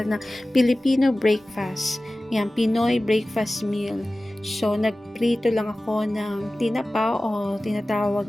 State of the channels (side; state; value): both; normal; correlation 0.97